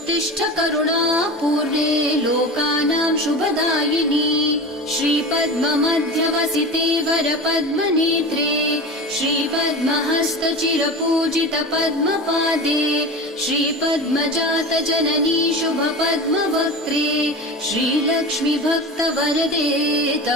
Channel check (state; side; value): normal; both; correlation 0.30